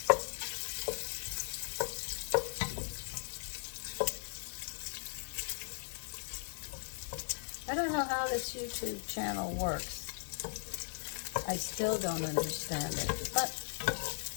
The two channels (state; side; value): silent; right; digital silence